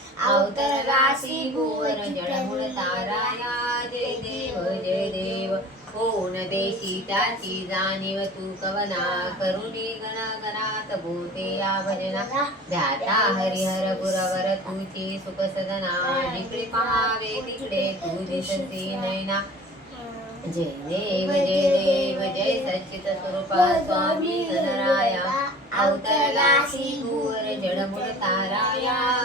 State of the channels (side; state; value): both; normal; correlation 0.42